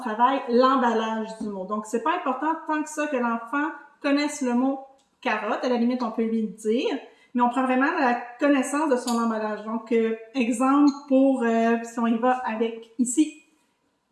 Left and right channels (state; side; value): identical; both; correlation 1.00